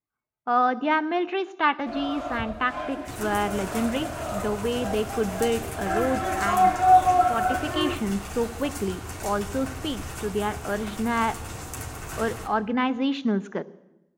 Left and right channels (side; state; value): both; identical; correlation 1.00